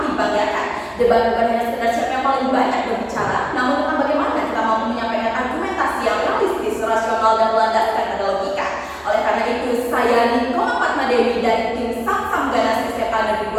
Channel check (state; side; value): identical; both; correlation 1.00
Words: banggakan. Debat bukan hanya sekedar siapa yang paling banyak berbicara, namun tentang bagaimana kita mampu menyampaikan argumentasi yang realistis, rasional, dan berlandaskan pada logika. Oleh karena itu, saya Nikoma Fatmadewi dari tim Samsam Ganas Kesehatan Negeri